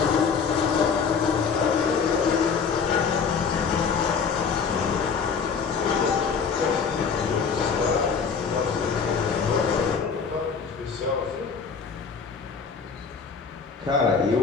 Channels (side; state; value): right; quieter; 5.8 dB